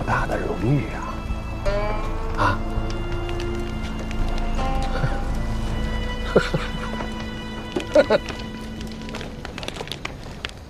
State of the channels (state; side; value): identical; both; correlation 1.00